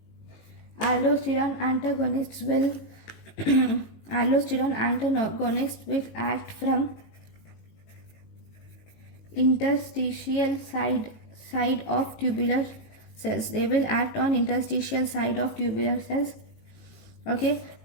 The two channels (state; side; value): late; right; 18 ms